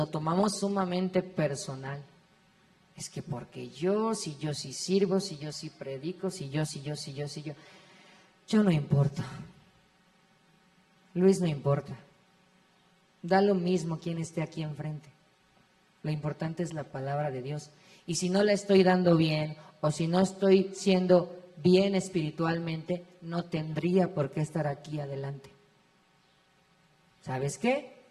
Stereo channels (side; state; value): both; identical; correlation 1.00